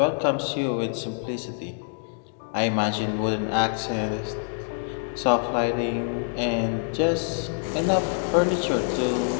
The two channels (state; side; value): silent; right; digital silence